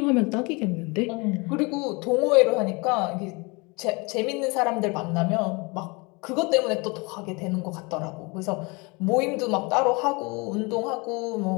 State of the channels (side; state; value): right; quieter; 27.9 dB